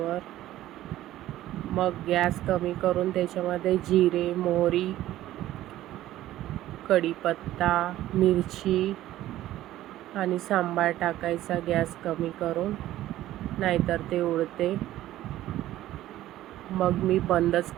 मग गॅस कमी करून त्याच्यामध्ये जिरे, मोहरी, कढीपत्ता, मिरची आणि सांबार टाकायचा गॅस कमी करून, नाहीतर ते उडते. मग मी बंदच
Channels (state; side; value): quieter; left; 14.3 dB